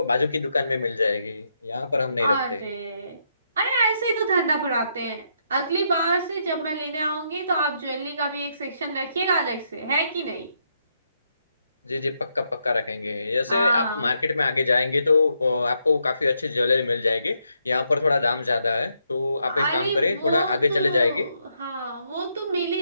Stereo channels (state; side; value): inverted; both; correlation -0.78